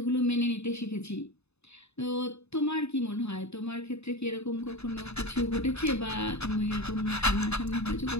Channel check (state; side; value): late; right; 0.80 ms